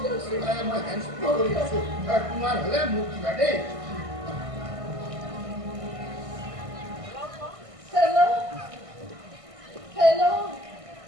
My hands are kumar hale muti bade. Hello,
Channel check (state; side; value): late; left; 1.6 ms